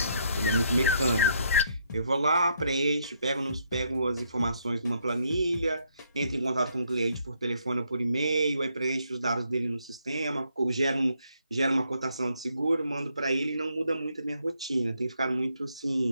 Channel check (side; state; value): both; inverted; correlation -0.73